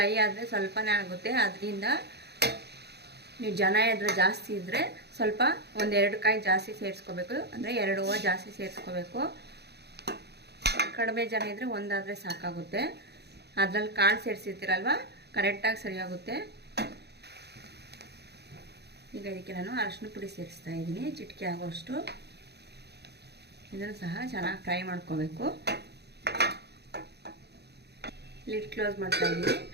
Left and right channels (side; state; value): left; late; 0.48 ms